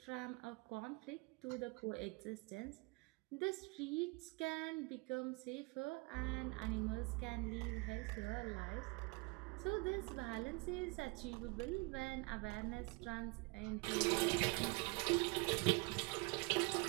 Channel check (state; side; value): quieter; left; 28.5 dB